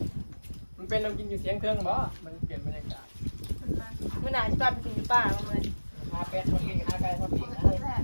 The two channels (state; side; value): inverted; both; correlation -1.00